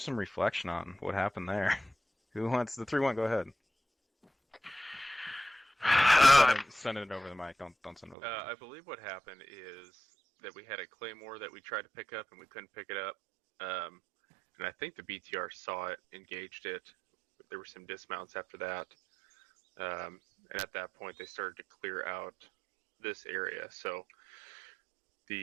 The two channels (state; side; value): drops out; left; at 8.2 s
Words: reflection on what happened there. Who wants the 3-1? Go ahead. Send it over the mic. Don't send it over. I believe what happened is that we had a claymore that we tried to pick up and we couldn't pick it up. And I think the BTR saw it, engaged it. There were some dismounts after that. And at that point, they started to clear out this area. So